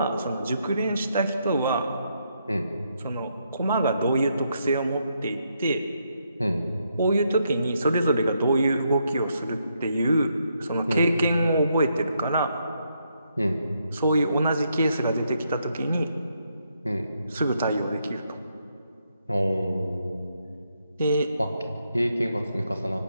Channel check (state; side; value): inverted; both; correlation -0.78